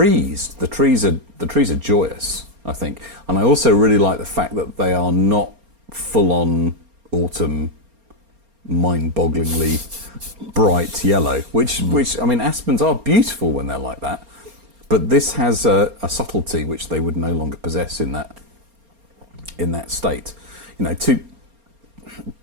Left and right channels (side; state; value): left; late; 4.3 ms